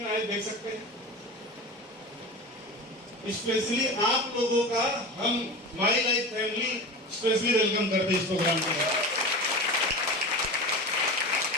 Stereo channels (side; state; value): both; normal; correlation 0.29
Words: आए देख सकते हैं? स्पेशली आप लोगों का हम my life family specially welcome करते हैं इस प्रोग्राम के लिए।